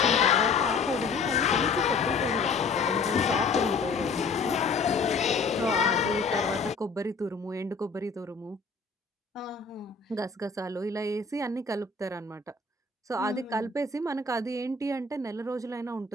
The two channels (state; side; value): quieter; right; 4.4 dB